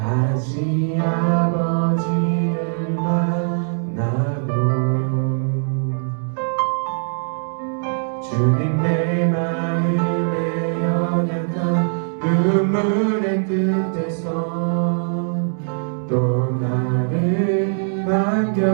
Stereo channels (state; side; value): silent; left; digital silence